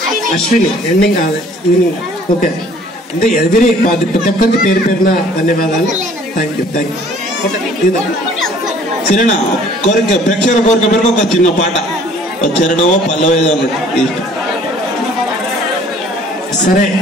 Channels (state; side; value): normal; both; correlation 0.55